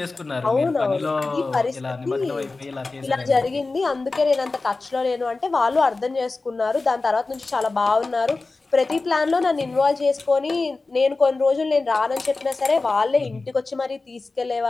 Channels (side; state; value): right; quieter; 3.6 dB